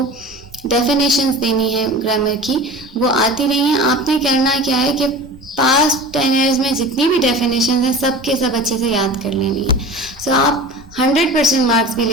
डेफिनेशंस देनी है ग्रामर की, वो आती नहीं है। आपने करना क्या है कि पास्ट 10 ईयर्स में जितनी भी डेफिनेशन है सब के सब अच्छे से याद कर लेनी है। सो आप 100% मार्क्स भी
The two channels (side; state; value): both; normal; correlation 0.36